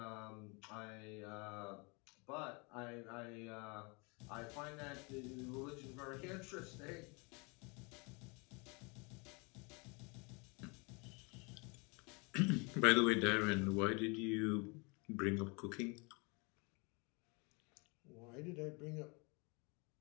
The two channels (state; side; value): quieter; right; 30.4 dB